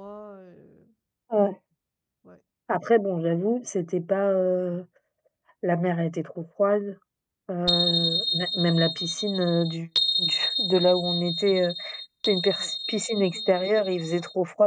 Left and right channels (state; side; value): identical; both; correlation 1.00